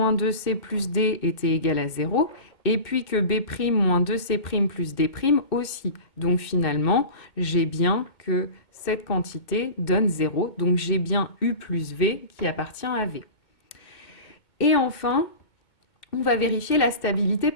2C plus D était égal à 0 et puis que B' moins 2C' plus D' aussi. Donc finalement, j'ai bien que cette quantité donne 0. Donc j'ai bien U plus V qui appartient à V. Et enfin, on va vérifier la stabilité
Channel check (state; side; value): late; right; 2.2 ms